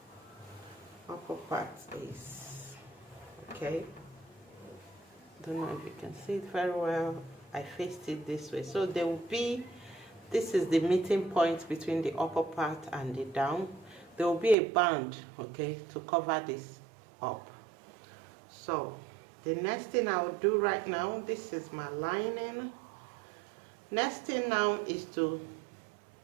upper part is. Okay, don't know if you can see it very well. I faced it this way, so there will be, this is the meeting point between the upper part and the down. There will be a band, okay, to cover this up. So the next thing I will do right now, this is my lining. Next thing now is to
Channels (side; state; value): left; drops out; at 14.6 s